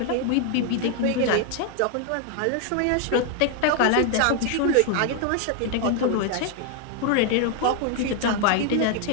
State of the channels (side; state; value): both; different; correlation 0.00